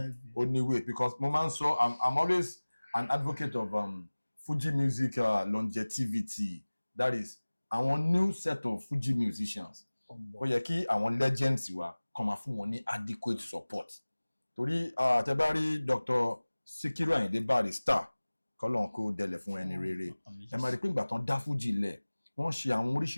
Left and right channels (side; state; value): both; inverted; correlation -1.00